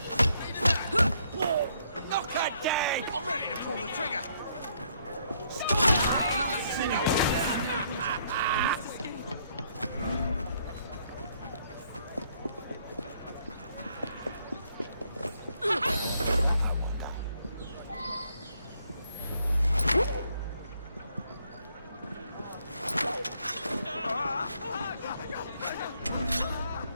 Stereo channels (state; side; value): inverted; both; correlation -0.69